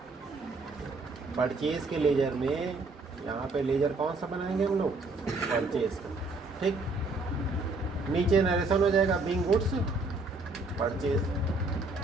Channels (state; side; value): quieter; left; 3.4 dB